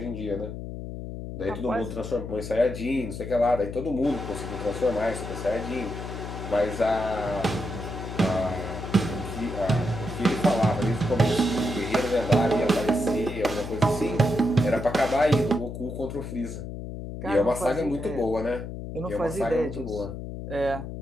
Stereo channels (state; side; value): noise; left; hum, 8 dB below the sound